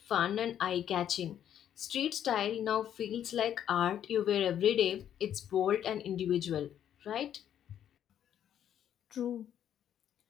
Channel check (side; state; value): right; quieter; 10.0 dB